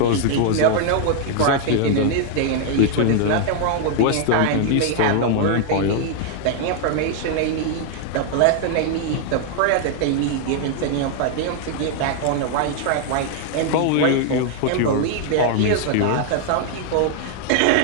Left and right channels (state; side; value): different; both; correlation 0.00